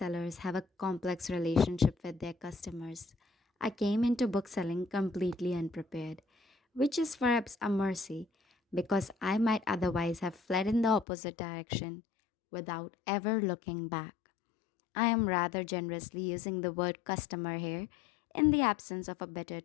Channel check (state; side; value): drops out; right; at 11.1 s